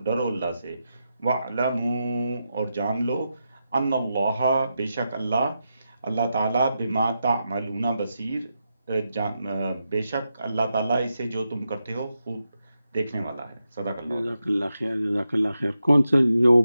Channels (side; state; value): both; inverted; correlation -0.87